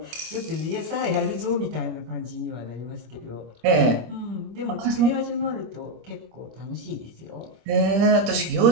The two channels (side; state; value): left; late; 25 ms